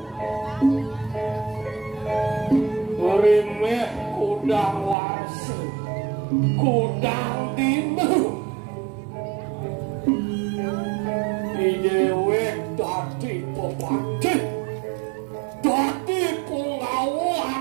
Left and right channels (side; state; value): left; drops out; at 5.0 s